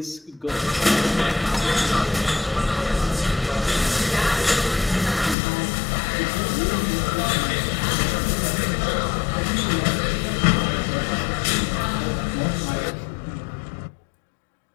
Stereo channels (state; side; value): drops out; right; at 5.4 s